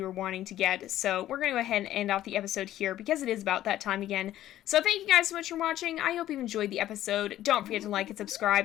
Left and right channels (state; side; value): quieter; right; 13.2 dB